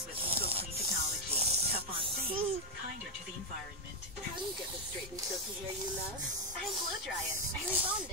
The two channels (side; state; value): both; normal; correlation 0.02